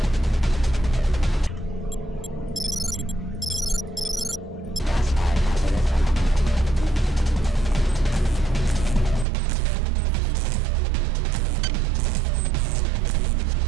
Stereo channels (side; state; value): left; drops out; at 9.2 s